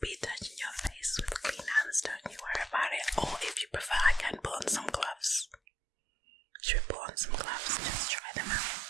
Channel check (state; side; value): drops out; left; at 5.6 s